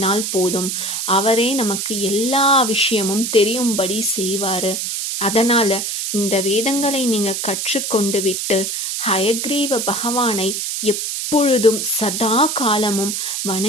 போதும், அவரே நமக்கு எல்லா விஷயமும் தெரியும்படி செய்வாரு. அதனால இந்த வேதங்களை நீங்க கற்றுக்கொண்டு விட்டு ஹயக்ரீவ பகவானை எப்பொழுதும் சதா காலமும்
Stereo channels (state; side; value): noise; right; hiss, 3 dB below the sound